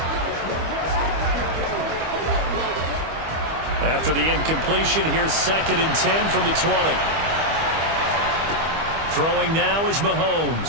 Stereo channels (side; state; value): left; late; 25 ms